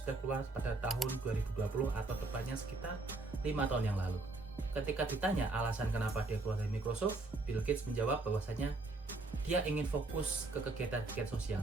keluar pada tahun 2020 atau tepatnya sekitar 5 tahun yang lalu. Ketika ditanya alasan kenapa dia keluar dari Microsoft, Bill Gates menjawab bahwasanya dia ingin fokus ke kegiatan-kegiatan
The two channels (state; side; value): quieter; left; 3.3 dB